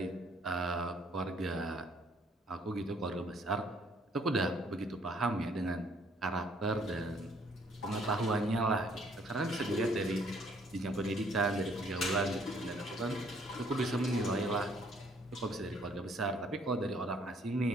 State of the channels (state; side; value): normal; both; correlation 0.63